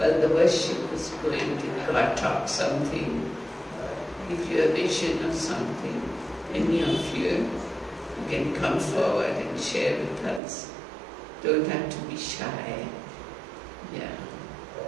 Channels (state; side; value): drops out; left; at 10.4 s